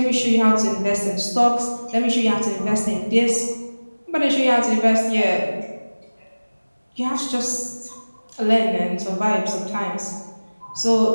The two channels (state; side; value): inverted; both; correlation -1.00